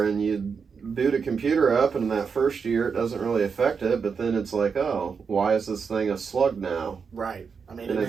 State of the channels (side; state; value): left; quieter; 5.8 dB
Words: and you boot a computer up, and in that first year it doesn't really affect it, but then it's like, oh, why is this thing a slug now? Right. I mean, and